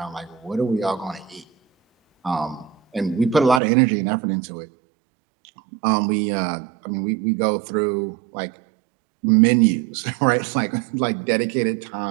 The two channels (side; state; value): left; drops out; at 3.6 s